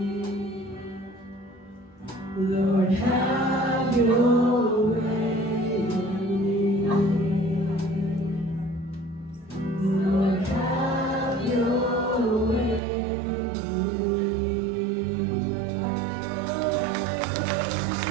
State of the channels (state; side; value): drops out; left; at 12.8 s